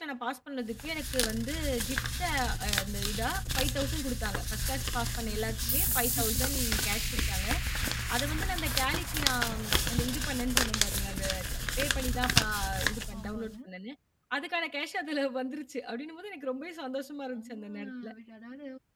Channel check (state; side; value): identical; both; correlation 1.00